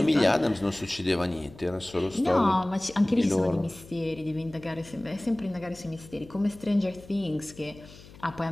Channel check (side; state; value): left; noise; hum, 20 dB below the sound